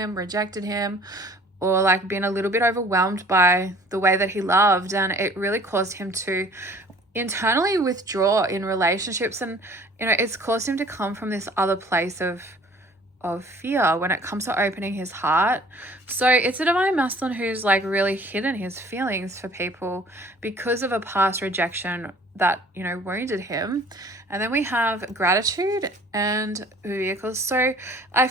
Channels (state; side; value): normal; both; correlation 0.52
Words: rejected him, or like been a little bit overwhelmed by the way that he loved, and it really caused him to internally withdraw in relationships. And, you know, it's caused him to come from this other place of fear when it comes to opening his heart. So it's a divine masculine who's like really hidden his feelings for people because of a past rejection that, you know, wounded him. And then we have gratitude and vehicles. So I